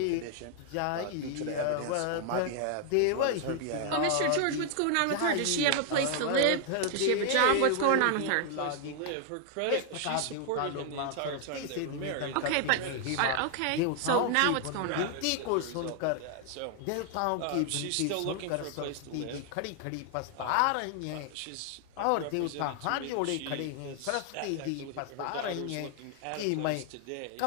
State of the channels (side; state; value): both; different; correlation 0.00